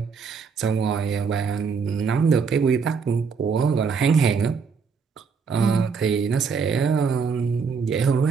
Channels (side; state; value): left; quieter; 5.6 dB